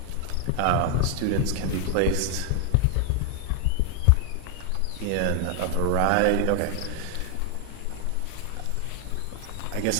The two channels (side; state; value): both; different; correlation 0.00